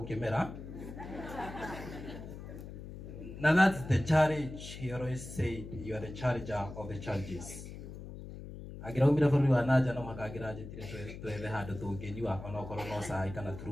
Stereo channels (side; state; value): left; noise; hum, 11 dB below the sound